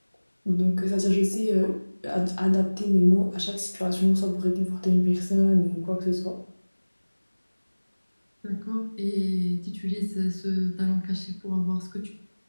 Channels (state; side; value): inverted; both; correlation -1.00